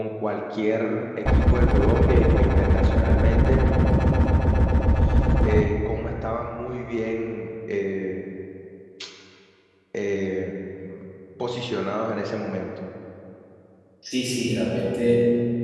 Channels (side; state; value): both; identical; correlation 1.00